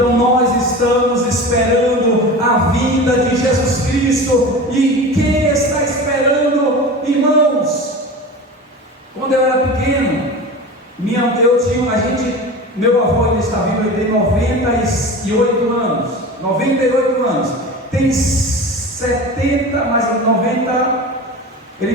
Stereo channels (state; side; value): normal; both; correlation 0.32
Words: nós estamos esperando a vinda de Jesus Cristo. E quem está esperando, irmãos? Quando eu era pequeno, meu avô ainda está vivo, ele tem 98 anos. 98 anos. Tem 70, mais 90.